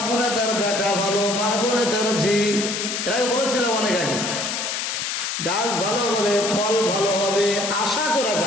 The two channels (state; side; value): noise; left; hiss, 2 dB below the sound